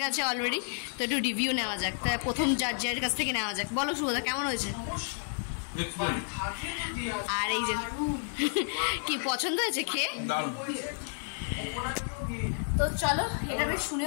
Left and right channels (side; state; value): right; silent; 57 dB below the other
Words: গেছে অলরেডি, তো একটু রিভিউ নেওয়া যাক। তা প্রথম জাজের কাছ থেকে নেওয়া যাক। বলো সুবোধা, কেমন হয়েছে? আর এই যে কি পছন্দ হয়েছে খেয়ে? তো চলো, এটা বেশ